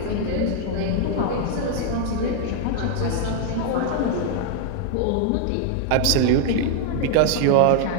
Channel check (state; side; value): different; both; correlation 0.00